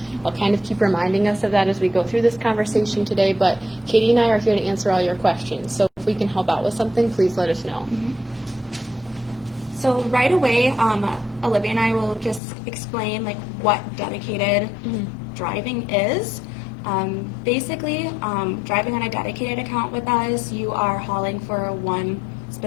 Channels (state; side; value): drops out; right; at 12.4 s